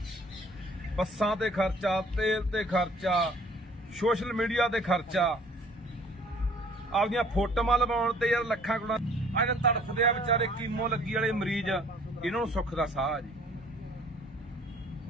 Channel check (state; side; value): normal; both; correlation 0.55